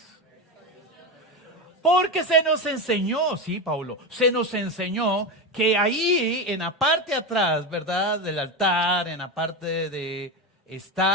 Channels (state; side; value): normal; both; correlation 0.17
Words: Porque se nos enseñó, sí, Paulo, se nos enseñó que ahí en la parte de atrás, ¿verdad? Del altar, en la parte